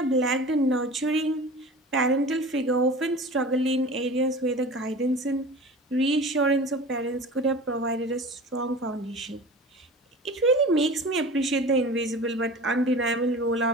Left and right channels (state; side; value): normal; both; correlation 0.37